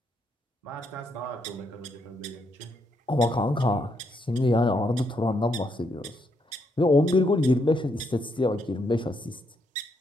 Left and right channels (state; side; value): normal; both; correlation 0.77